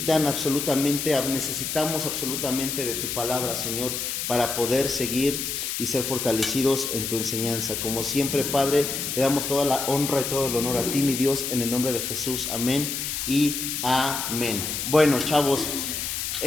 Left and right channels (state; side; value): noise; left; hiss, 3 dB below the sound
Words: absolutamente de tu palabra, Señor, para poder seguir y ser fortalecidos en tu enseñanza. Como siempre, Padre, le damos toda la honra y todo el honor a ti, mi Dios, en el nombre de Jesús. Amén y amén. Bueno, chavos,